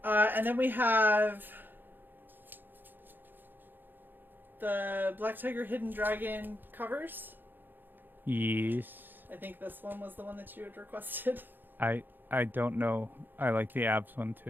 And then we have the Black Tiger Hidden Dragon covers. Yes. I think this one was the one that you had requested. I don't know. I like the abs one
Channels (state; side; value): late; left; 0.092 ms